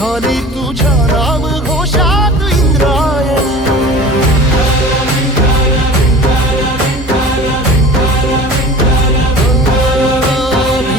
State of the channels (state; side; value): normal; both; correlation 0.39